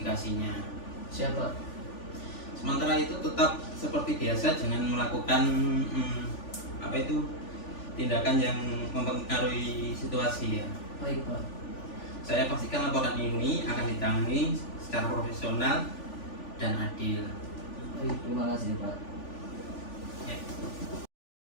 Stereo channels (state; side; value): late; right; 3.4 ms